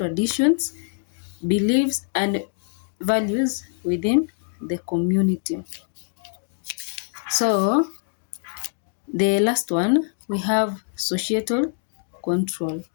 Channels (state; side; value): silent; right; digital silence